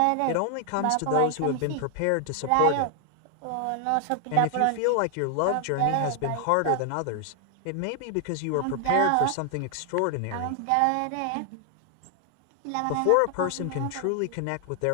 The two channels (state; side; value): different; both; correlation 0.00